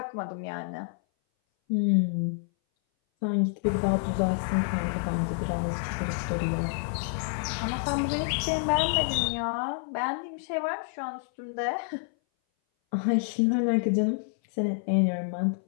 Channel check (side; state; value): right; silent; 58 dB below the other